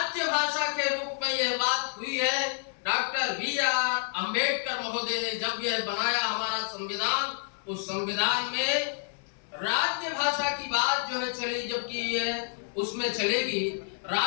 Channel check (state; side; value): silent; right; 59 dB below the other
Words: भाषा के रूप में यह बात हुई है। Doctor B R. अंबेडकर महोदय ने जब यह बनाया हमारा संविधान, उस संविधान में राज्य भाषा की बात जो है चली, जबकि यह उसमें चलेगी